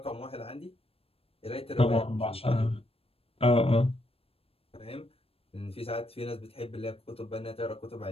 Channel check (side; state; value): right; late; 0.28 ms